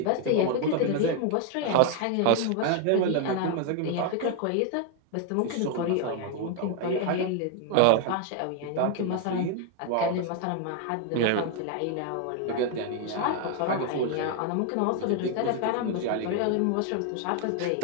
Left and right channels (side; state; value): both; different; correlation 0.00